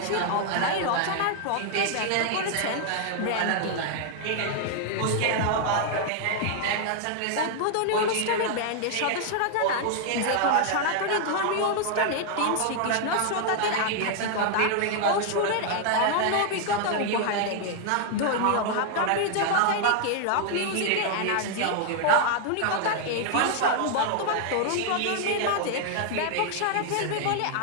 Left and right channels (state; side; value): different; both; correlation 0.00